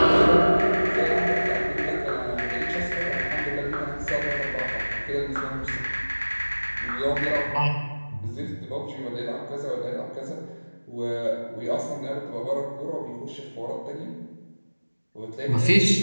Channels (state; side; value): inverted; both; correlation -1.00